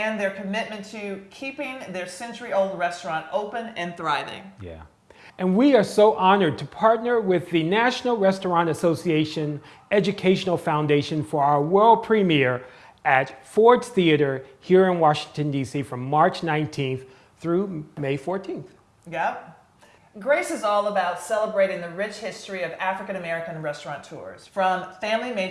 their commitment to keeping their century-old restaurant open and thriving. Yeah. And we are so honored to partner with the National Restaurant Association Educational Foundation for our world premiere at Ford's Theater here in Washington, D.C. from March 19th through May 14th. Yep. Grace is all about celebrating the rich history of African American restaurateurs, from family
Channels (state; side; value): identical; both; correlation 1.00